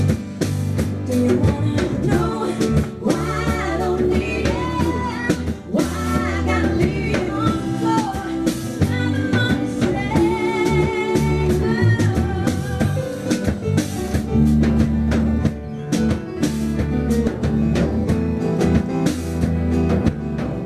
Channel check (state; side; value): identical; both; correlation 1.00